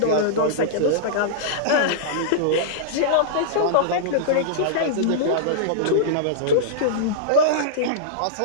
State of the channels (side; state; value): both; different; correlation -0.02